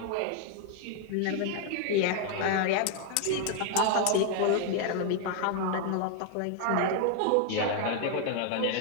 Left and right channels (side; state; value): both; different; correlation 0.00